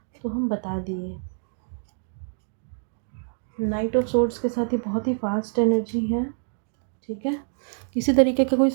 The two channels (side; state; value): left; silent; digital silence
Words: तो हम बता दिए। नाइट ऑफ सोर्ड्स के साथ ही बहुत ही फास्ट एनर्जी है, ठीक है। किसी तरीके का कोई